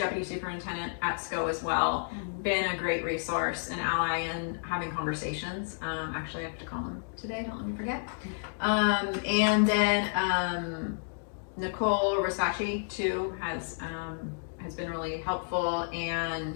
Superintendent at SCO as well. Been a great resource and ally in having conversations. Actually, I have to call him today, don't let me forget. And then Nicole Rosacci too has been really helpful,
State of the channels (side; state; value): right; silent; digital silence